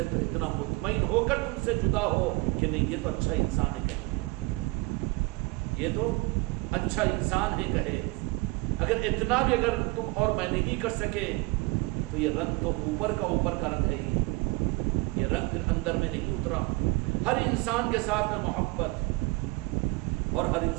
تو اتنا مطمئن ہو کر تم سے جدا ہو کہ نہیں یہ تو اچھا انسان ہے کہے، یہ تو اچھا انسان ہے کہے. اگر اتنا بھی اگر تم اور میں نہیں کر سکے تو یہ رنگ تو اوپر کا رنگ ہے ہی، یہ رنگ پھر اندر میں نہیں اترا. ہر انسان کے ساتھ میں محبت، اور ہر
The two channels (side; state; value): left; quieter; 24.6 dB